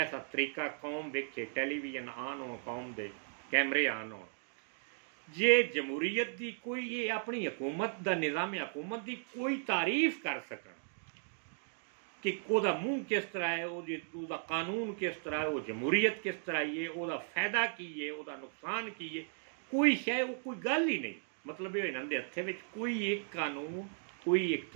तरीका कौम वेखे, टेलीविजन आन हो, कौम दे कैमरे आन हो, जे जमहूरीयत की कोई ये अपनी हुकूमत का निज़ाम हुकूमत की कोई तारीफ कर सकन कि वह मूँह किस तरह है, वह कानून किस तरह है, वो जमहूरीयत किस तरह है, वह फ़ायदा की है, वह नुकसान की है, कोई शय वो कोई गल ही नहीं। मतलब ये इन्होंने हत्थे विच कोई एक कानून, कोई एक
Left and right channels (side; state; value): left; silent; digital silence